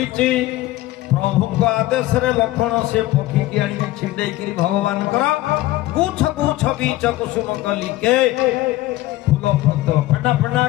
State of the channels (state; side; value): quieter; right; 16.7 dB